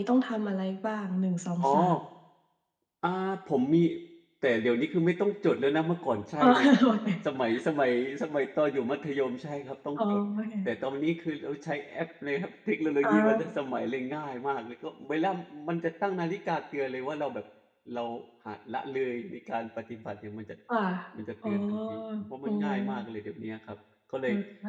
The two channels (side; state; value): both; identical; correlation 1.00